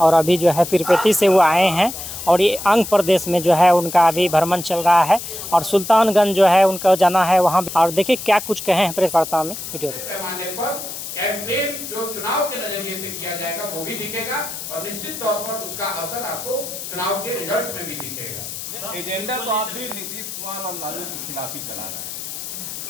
और अभी जो है पीरपेटी से वो आए हैं और ये आंध्र प्रदेश में जो है उनका अभी भ्रमण चल रहा है और सुल्तानगंज जो है उनका जाना है वहाँ। और देखिए क्या कुछ कहे हैं प्रेस वार्ता में, वीडियो पैमाने पर कैंपेन जो चुनाव के नजरिए से किया जाएगा वो भी दिखेगा और निश्चित तौर पर उसका असर आपको चुनाव के रिजल्ट में भी दिखेगा। एजेंडा तो आप भी नीतीश कुमार और लालू के खिलाफ ही चला रहे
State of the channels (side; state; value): left; noise; hiss, 8 dB below the sound